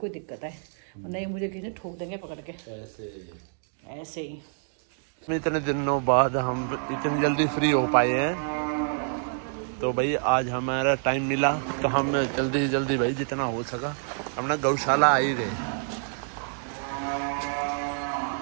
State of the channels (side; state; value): left; silent; 60 dB below the other